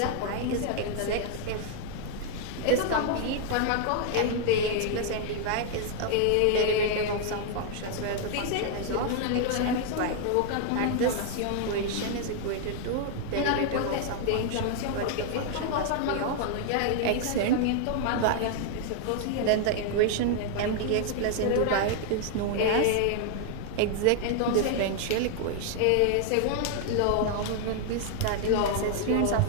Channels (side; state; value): both; different; correlation 0.00